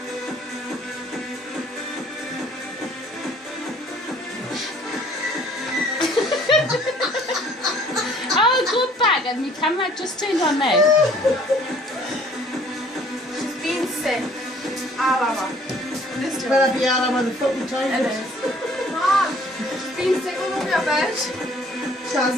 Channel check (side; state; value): both; normal; correlation 0.56